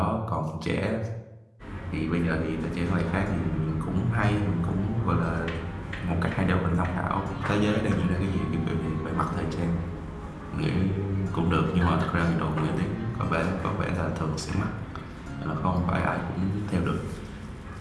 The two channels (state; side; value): identical; both; correlation 1.00